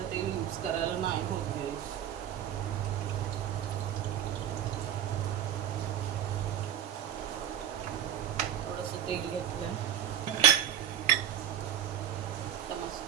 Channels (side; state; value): left; quieter; 10.3 dB